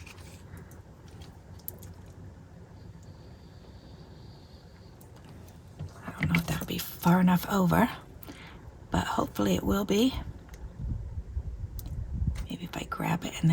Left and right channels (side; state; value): both; identical; correlation 1.00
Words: I don't know if that'll be far enough over, but hopefully it will be. Maybe if I grab it and